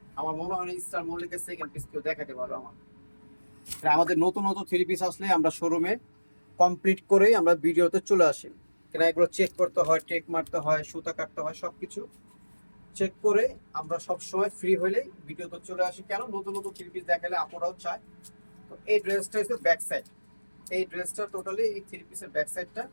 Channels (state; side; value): inverted; both; correlation -1.00